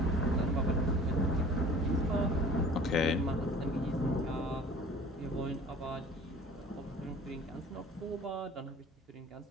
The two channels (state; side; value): normal; both; correlation 0.46